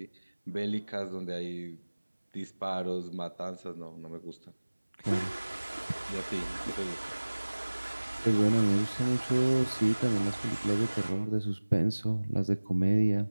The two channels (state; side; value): inverted; both; correlation -1.00